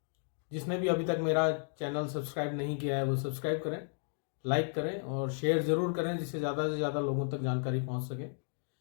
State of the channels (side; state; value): right; silent; 55 dB below the other